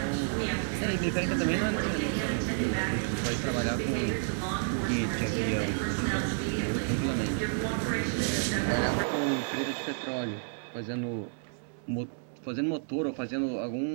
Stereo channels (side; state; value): left; silent; 58 dB below the other